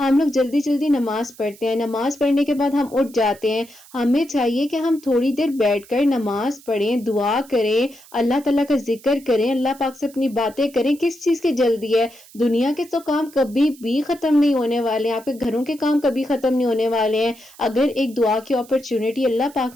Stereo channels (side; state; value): right; noise; hiss, 23 dB below the sound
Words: لوگ جلدی جلدی نماز پڑھتے ہیں، نماز پڑھنے کے بعد ہم اٹھ جاتے ہیں. ہمیں چاہیے کہ ہم تھوڑی دیر بیٹھ کر نماز پڑھیں، دعا کریں، اللہ تعالیٰ کا ذکر کریں، اللہ پاک سے اپنی باتیں کریں. کس چیز کی جلدی ہے؟ دنیا کے تو کام کبھی بھی ختم نہیں ہونے والے ہیں، آپ کے گھروں کے کام کبھی ختم نہیں ہونے والے ہیں. اگر ایک دعا کی اپرچونٹی اللہ پاک